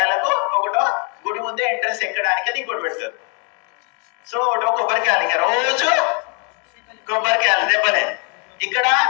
ఒకటో గుడి ముందే ఎంట్రన్స్ ఎక్కడానికి అని ఇంకోటి పెడతారు. సో ఒకటో కొబ్బరికాయలు, ఇంకా రోజు కొబ్బరికాయలు దెబ్బలే. ఇక్కడ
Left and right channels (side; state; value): right; quieter; 36.8 dB